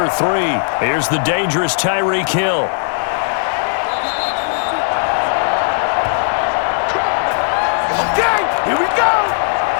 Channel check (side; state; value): right; silent; digital silence